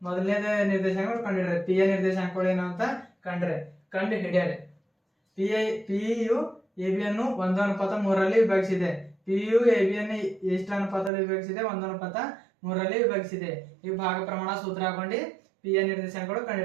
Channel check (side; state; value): left; drops out; at 11.1 s